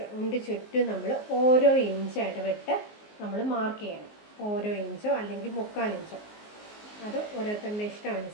ചുറ്റും നമ്മൾ ഓരോ ഇഞ്ചായിട്ട് വിട്ട് നമ്മൾ മാർക്ക് ചെയ്യണം. ഓരോ ഇഞ്ചോ അല്ലെങ്കിൽ 3/4 ഇഞ്ചോ, അത് ഓരോരുത്തരുടെ ഇഷ്ടം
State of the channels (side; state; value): right; late; 19 ms